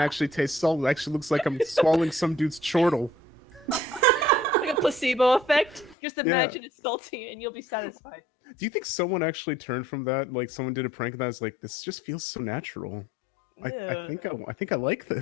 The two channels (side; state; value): right; drops out; at 6.0 s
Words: taste salt. It actually looks like I'm swallowing some dude's chortle. Like a placebo effect. Just imagine it's salty, and you'll be satisfied. Do you think someone actually turned from that? Like someone did a prank that was like, this just feels so natural. I think I like